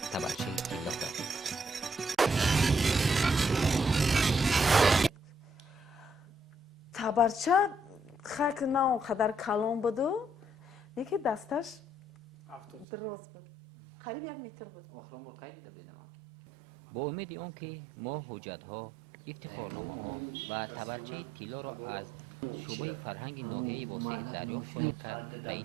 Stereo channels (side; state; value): left; drops out; at 12.9 s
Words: تبرچه طلا داد. تبرچه خاک نه قدر کلان بود و یکی دستش دراز بود قریب 1 متر بود. با امید آنکه ما حجت‌ها، افتخارنامه‌ها و تبرچه طلا را از شعبه فرهنگ ناحیه واسع دریافت خواهیم کرد به